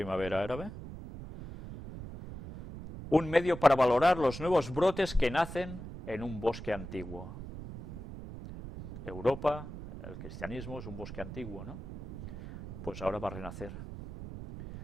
árabe? Un medio para valorar los nuevos brotes que nacen en un bosque antiguo. Europa, el cristianismo es un bosque antiguo, ¿no? Pues ahora va a renacer.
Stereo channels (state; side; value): noise; right; rumble, 11 dB below the sound